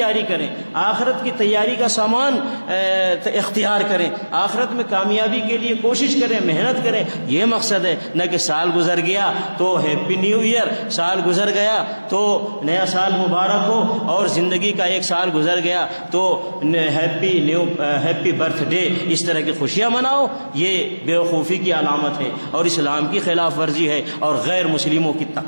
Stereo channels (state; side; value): inverted; both; correlation -1.00